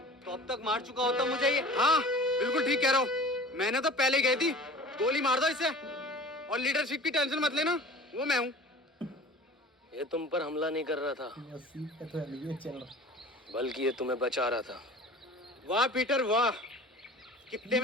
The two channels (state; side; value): normal; both; correlation 0.42